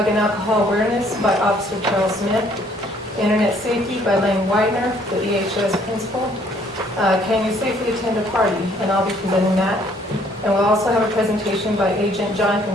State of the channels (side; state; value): both; normal; correlation 0.62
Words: and alcohol awareness by Officer Charles Smith, internet safety by Lane Widener, the EHS principal. Can you safely attend a party? And I'll be presenting that. And we'll also have a presentation by Agent